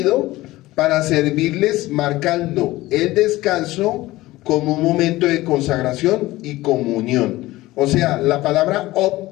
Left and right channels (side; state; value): right; quieter; 18.0 dB